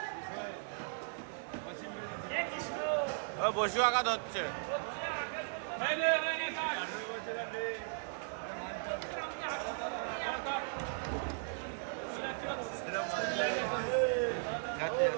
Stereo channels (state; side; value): silent; left; digital silence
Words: ও বসু আঘা ধরছে।